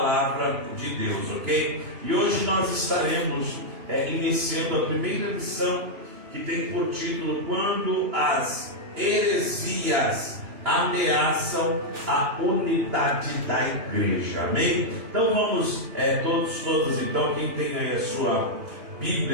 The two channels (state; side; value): late; left; 2.9 ms